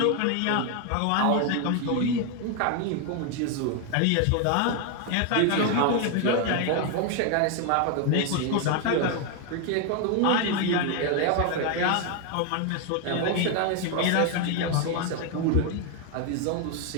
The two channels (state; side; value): different; both; correlation 0.01